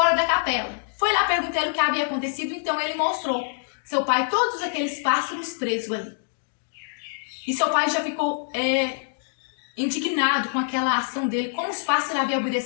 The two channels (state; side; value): silent; right; digital silence